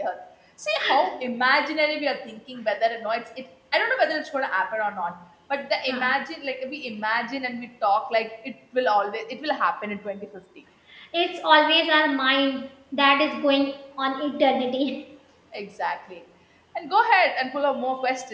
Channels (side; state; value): both; identical; correlation 1.00